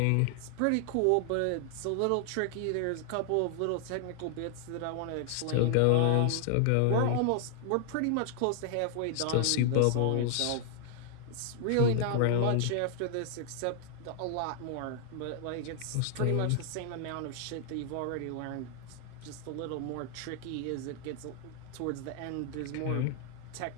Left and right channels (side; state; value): both; different; correlation 0.00